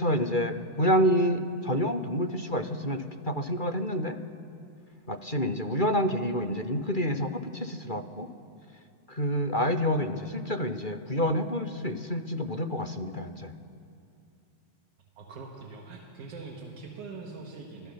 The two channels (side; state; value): right; late; 2.3 ms